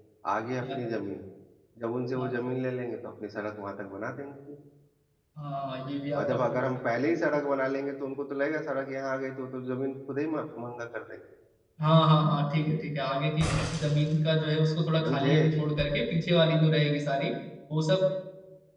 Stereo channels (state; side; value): identical; both; correlation 1.00